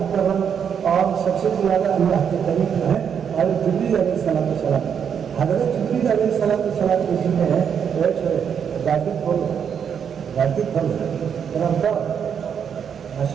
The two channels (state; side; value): quieter; left; 7.7 dB